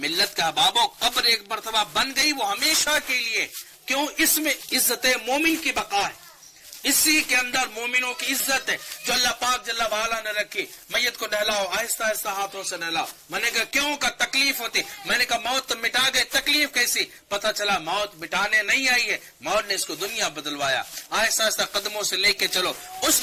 کا بابو قبر ایک مرتبہ بن گئی وہ ہمیشہ کے لیے، کیوں؟ اس میں عزت مومن کی بقا ہے، اسی کے اندر مومنوں کی عزت ہے جو اللہ پاک جل وعلا نے رکھی. میت کو نہلاؤ، آہستہ آہستہ ہاتھوں سے نہلاؤ. میں نے کہا کیوں؟ کا تکلیف ہوتی. میں نے کہا موت تو مٹا گئے، تکلیف کیسی؟ پتہ چلا موت مٹانے نہیں آئی ہے، موت نے اس کو دنیا بدلوایا. آہستہ آہستہ قدموں سے لے کے چلو. اس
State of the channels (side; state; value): both; identical; correlation 1.00